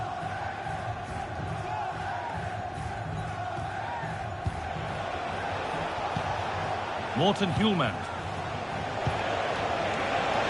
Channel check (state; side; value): identical; both; correlation 1.00